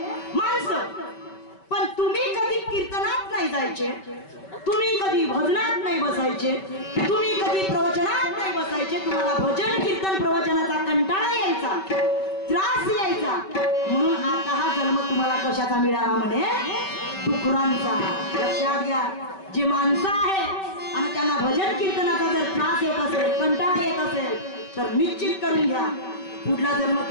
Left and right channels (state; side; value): late; right; 5.2 ms